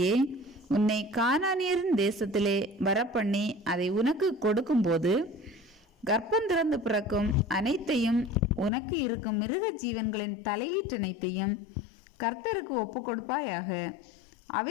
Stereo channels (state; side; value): drops out; right; at 8.7 s